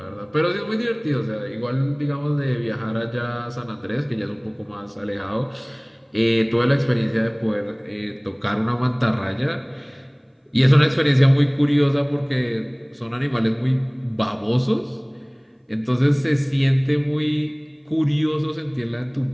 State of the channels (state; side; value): identical; both; correlation 1.00